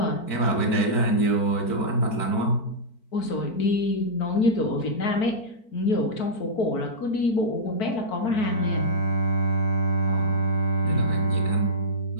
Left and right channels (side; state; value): right; late; 4.5 ms